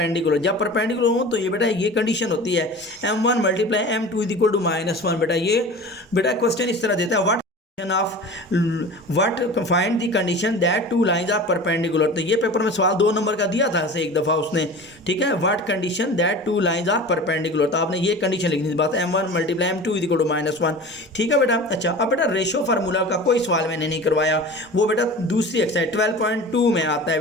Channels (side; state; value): both; normal; correlation 0.36